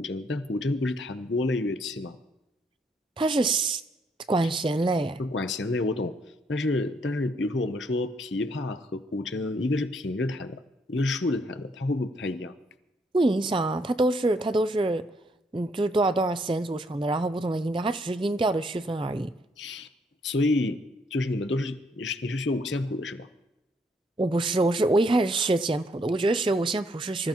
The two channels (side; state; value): both; normal; correlation 0.70